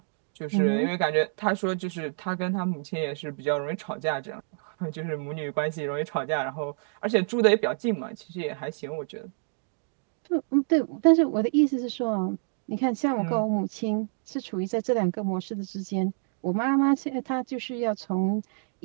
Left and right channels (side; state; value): left; silent; digital silence